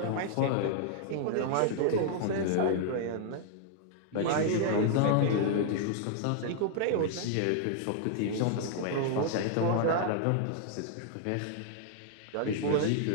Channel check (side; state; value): both; different; correlation -0.01